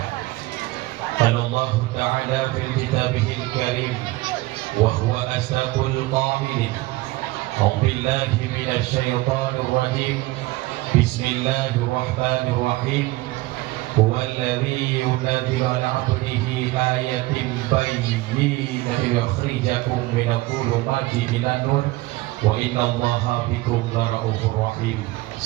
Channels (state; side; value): quieter; left; 19.6 dB